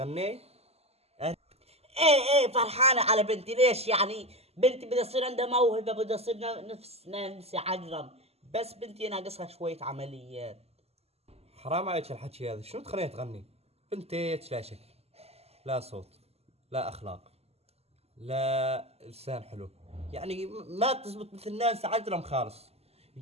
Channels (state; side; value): late; left; 0.29 ms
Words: ايه فرحانة على بنتي. ليش يعني؟ بنتي بدها تصير عندها موهبة، بدها تصير نفس نانسي عجرم، بس بنتي ناقصها شوية عمليات. حرام عليك الحكي هذا، شنو تخليها تغني؟ بنتك لا شكل، لا صوت، لا اخلاق، لا لسان حلو، يعني ما تزبط مثل ناس عجرم خالص.